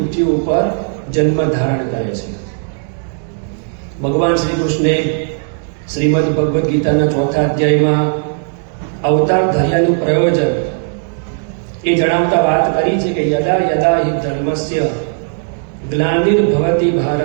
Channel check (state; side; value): silent; left; 63 dB below the other